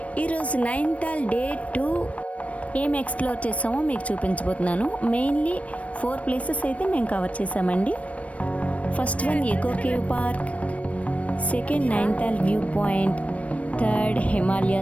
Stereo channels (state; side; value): late; right; 0.065 ms